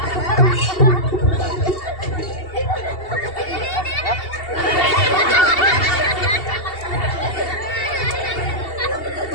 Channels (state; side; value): late; right; 2.7 ms